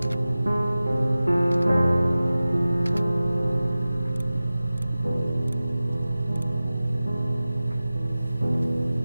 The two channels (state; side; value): inverted; both; correlation -0.97